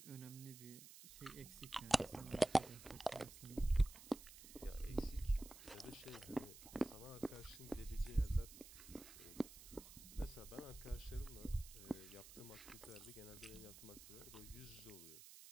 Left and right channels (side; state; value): right; noise; hiss, 15 dB below the sound